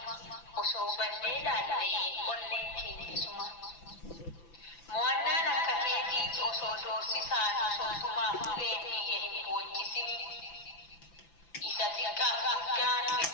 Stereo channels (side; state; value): right; late; 5.9 ms